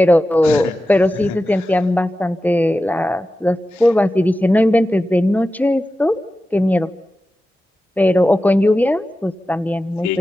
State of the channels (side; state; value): both; normal; correlation 0.93